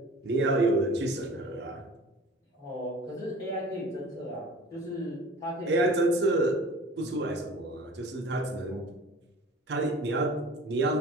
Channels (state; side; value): normal; both; correlation 0.43